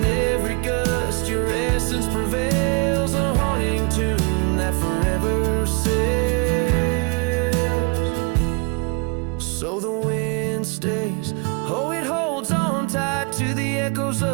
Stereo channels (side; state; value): left; quieter; 32.3 dB